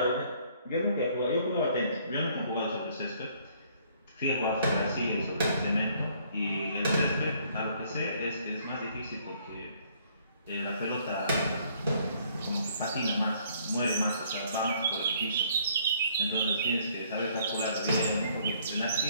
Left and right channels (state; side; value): inverted; both; correlation -0.63